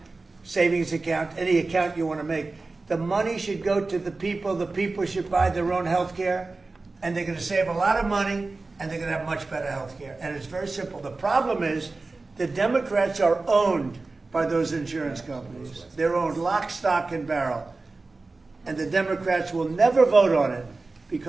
savings account, any account you want to make. The money should go to the people. The people should buy their own health care, and they're going to save a lot of money, and they're going to have much better health care. And it's very simple. The problem is the Democrats are owned by those insurance companies. They're owned lock, stock, and barrel. And the Democrats will never vote on it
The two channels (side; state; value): left; quieter; 3.6 dB